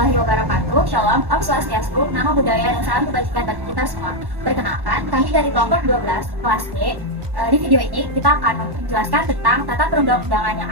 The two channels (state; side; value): late; left; 1.1 ms